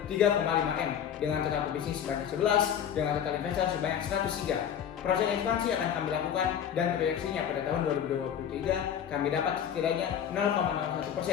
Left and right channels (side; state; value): right; quieter; 8.9 dB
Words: 3,5 M dengan total pebisnis sebanyak 11 dengan total investor sebanyak 103. Proses ekspansi akan kami lakukan dan proyeksinya pada tahun 2023 kami dapat setidaknya